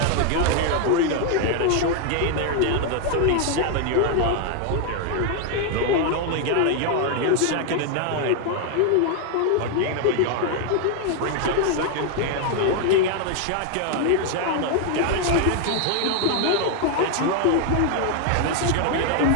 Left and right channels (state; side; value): different; both; correlation 0.00